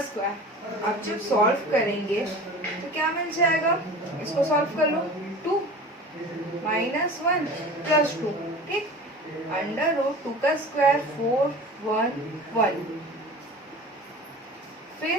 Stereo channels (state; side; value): normal; both; correlation 0.37